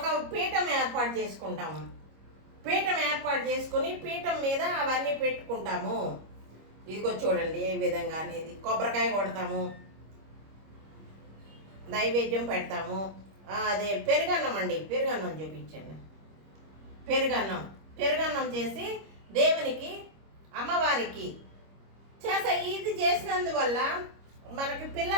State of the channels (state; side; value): late; left; 25 ms